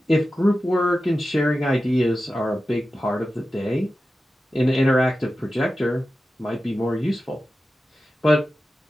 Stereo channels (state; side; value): normal; both; correlation 0.93